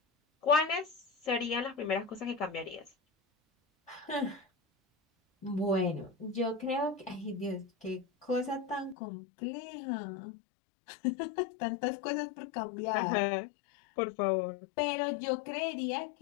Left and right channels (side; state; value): right; drops out; at 9.0 s